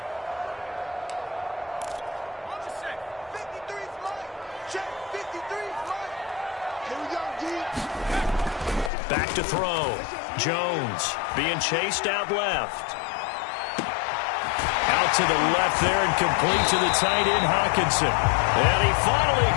Back to throw. Jones being chased out left. Out to the left there and complete to the tight end, Hockenson. And he finally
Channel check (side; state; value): right; drops out; at 8.9 s